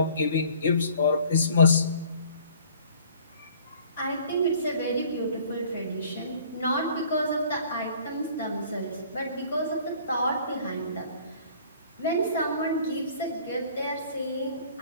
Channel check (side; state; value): both; inverted; correlation -0.53